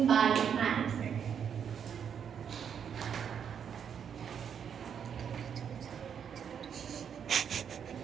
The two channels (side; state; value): left; quieter; 7.8 dB